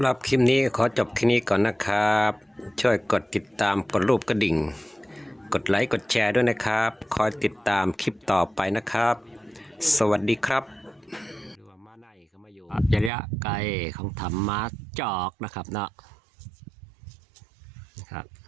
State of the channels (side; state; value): left; drops out; at 13.1 s